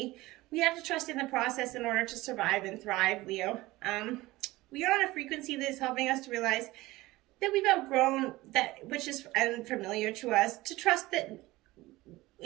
we have to trust in the process in order to survive and thrive, Leo. We are on a frequency that is helping us to realize that we've outgrown that which is unfamiliar to us, to trust that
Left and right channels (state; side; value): quieter; left; 19.1 dB